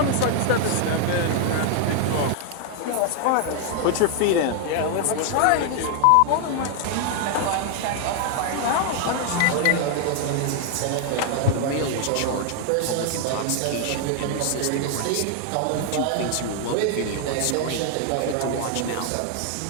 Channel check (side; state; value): both; different; correlation 0.00